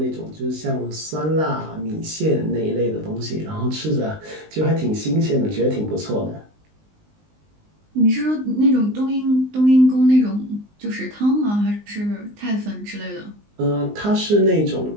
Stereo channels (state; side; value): late; left; 19 ms